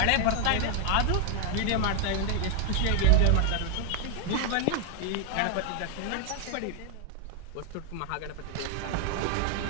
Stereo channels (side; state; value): both; different; correlation 0.00